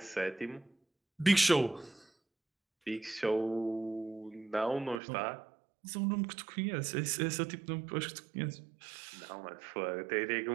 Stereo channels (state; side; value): drops out; left; at 5.0 s